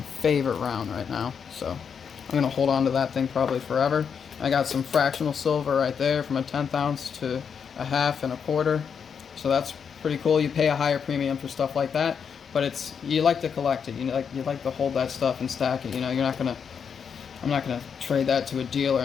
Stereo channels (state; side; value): quieter; right; 6.8 dB